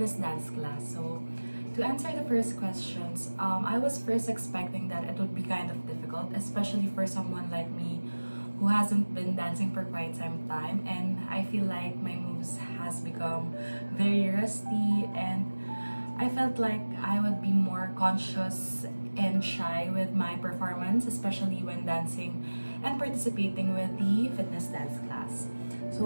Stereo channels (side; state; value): both; inverted; correlation -1.00